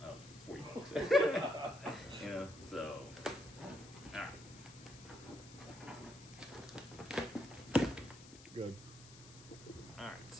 $40. You know, so all right. Good. All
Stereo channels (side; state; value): left; noise; hiss, 18 dB below the sound